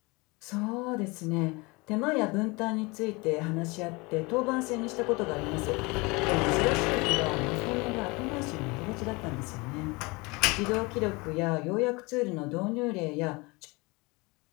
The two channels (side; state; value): right; quieter; 25.9 dB